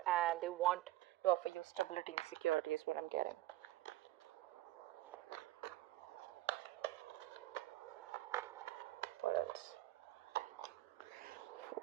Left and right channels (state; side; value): quieter; left; 16.1 dB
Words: and they want to offer you stability and security, is what I'm getting. What else?